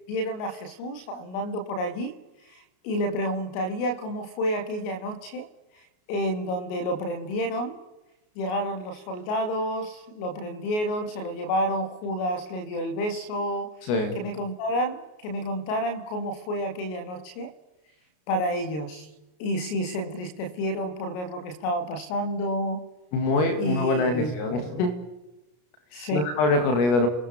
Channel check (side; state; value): right; late; 33 ms